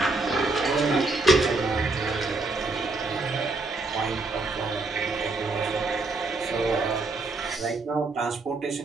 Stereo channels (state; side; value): quieter; left; 3.3 dB